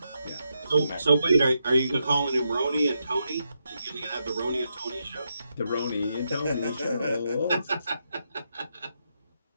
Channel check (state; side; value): inverted; both; correlation -0.83